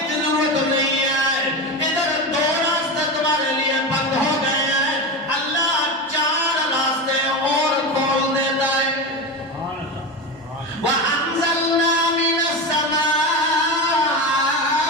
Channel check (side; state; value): both; normal; correlation 0.21